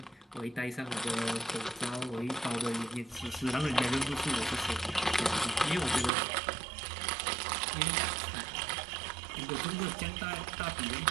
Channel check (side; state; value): left; drops out; at 6.1 s